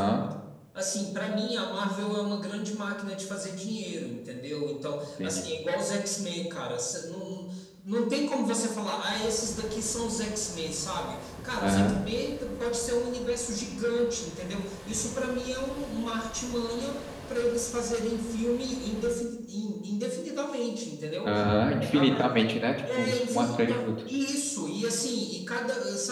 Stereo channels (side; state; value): both; identical; correlation 1.00